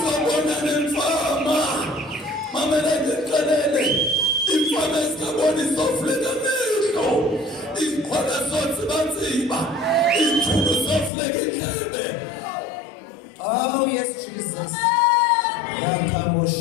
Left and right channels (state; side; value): drops out; right; at 11.1 s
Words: nemfama, mamela ndixelele, imfama ezingaboni zofuleka amehlo, izixhwala zotsibatsiba, izithulu zofuleka indlebe. Oh yes, Jesus.